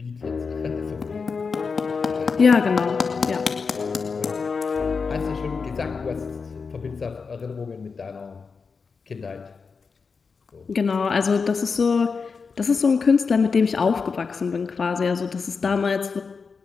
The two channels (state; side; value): quieter; right; 5.1 dB